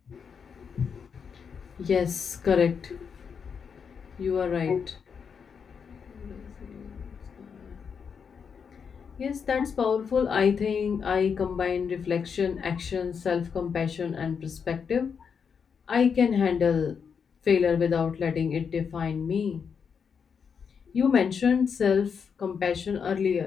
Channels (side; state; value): right; quieter; 6.5 dB